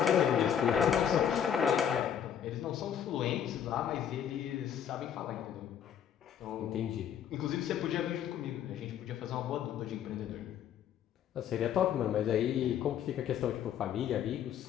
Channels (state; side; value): quieter; right; 9.0 dB